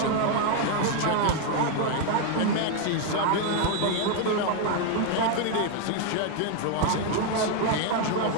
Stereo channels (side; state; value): both; different; correlation 0.01